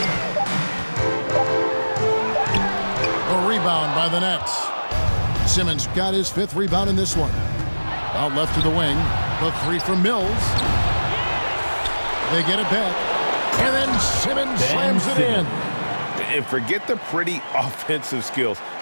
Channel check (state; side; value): inverted; both; correlation -1.00